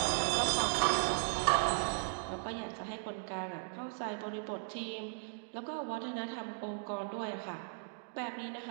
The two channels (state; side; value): silent; left; digital silence